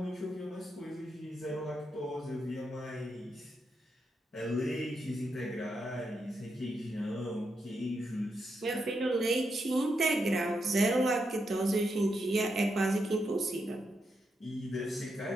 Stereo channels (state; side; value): normal; both; correlation 0.83